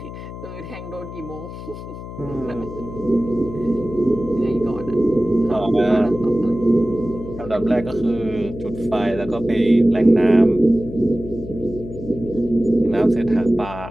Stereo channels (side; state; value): left; noise; hum, 11 dB below the sound